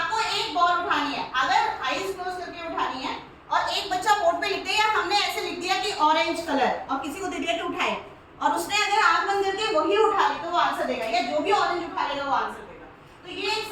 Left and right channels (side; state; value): both; identical; correlation 1.00